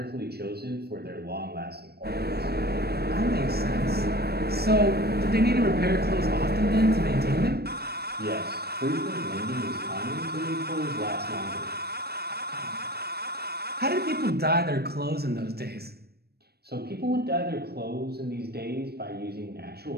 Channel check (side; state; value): left; late; 0.47 ms